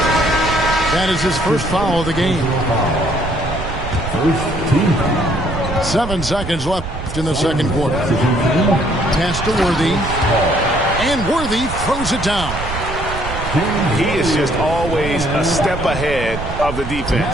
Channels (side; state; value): right; noise; rumble, 8 dB below the sound